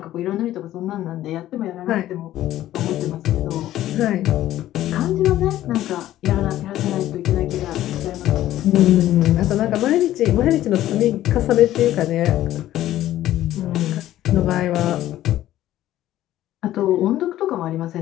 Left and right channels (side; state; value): right; quieter; 13.7 dB